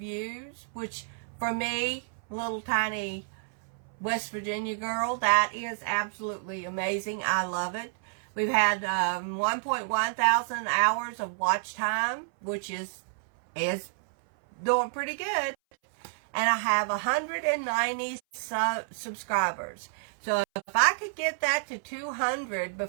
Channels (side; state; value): left; silent; 58 dB below the other